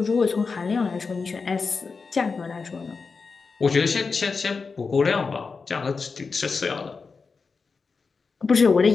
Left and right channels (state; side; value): quieter; right; 4.7 dB